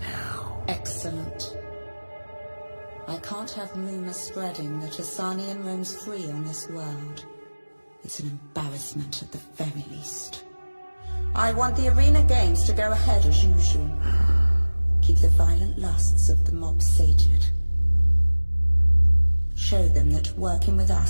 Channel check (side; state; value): both; inverted; correlation -1.00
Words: now. Excellent. I can't have rumors spreading that a Sarnian roams free on this world. It's an embarrassment at the very least. I want the arena games to go ahead as usual. Keep the violent lusts of the mob sated. Show them that working with